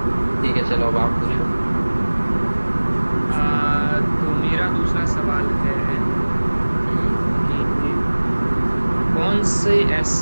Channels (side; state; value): both; inverted; correlation -1.00